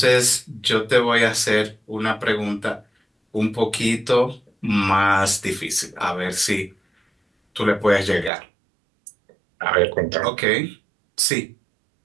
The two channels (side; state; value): left; drops out; at 8.3 s